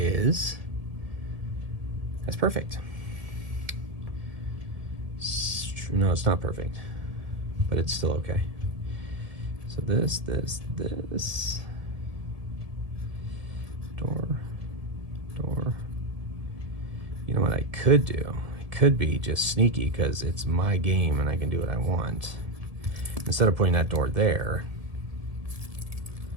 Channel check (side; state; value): left; late; 1.7 ms